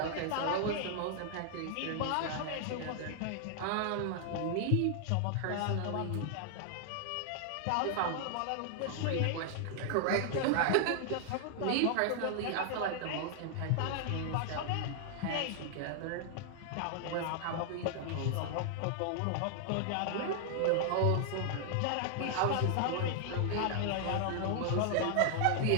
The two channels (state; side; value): different; both; correlation 0.00